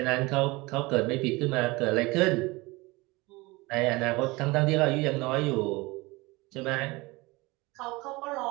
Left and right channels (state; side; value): quieter; left; 23.1 dB